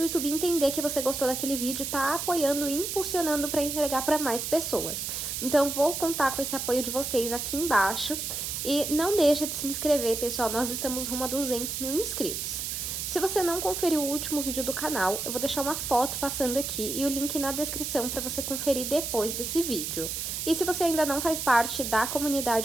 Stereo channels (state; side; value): noise; right; hiss, 4 dB below the sound